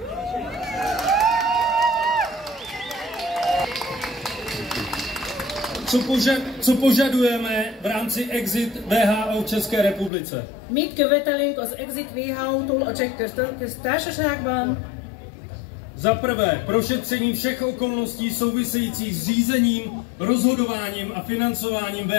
Co požadujeme v rámci Exit WHO v České republice? Mit követelünk az Exit WHO-tól a Cseh Köztársaságban? Za prvé, prošetření všech okolností souvisejících s řízením, rozhodováním a financováním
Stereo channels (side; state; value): right; drops out; at 10.1 s